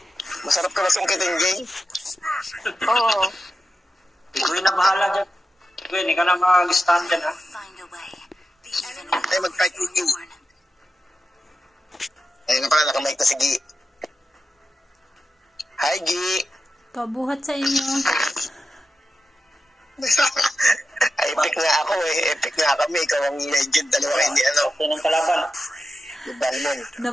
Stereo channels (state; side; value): normal; both; correlation 0.90